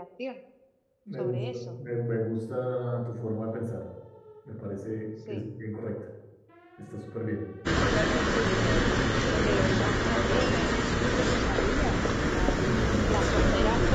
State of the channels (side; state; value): both; identical; correlation 1.00